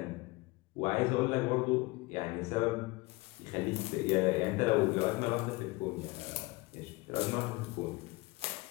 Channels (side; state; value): right; quieter; 22.8 dB